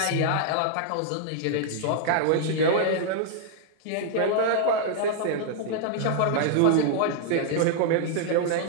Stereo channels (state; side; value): different; both; correlation -0.01